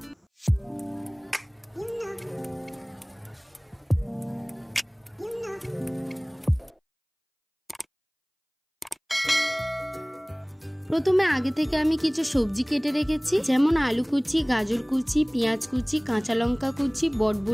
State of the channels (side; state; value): both; identical; correlation 1.00